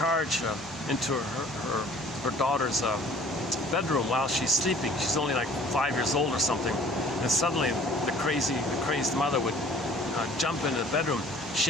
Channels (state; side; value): normal; both; correlation 0.52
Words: into her daughter's bedroom while she's sleeping. She's only like 5 years old or something, and suddenly the crazed mother would jump into the bedroom,